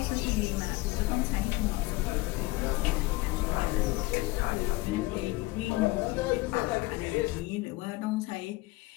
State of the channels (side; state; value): right; quieter; 20.7 dB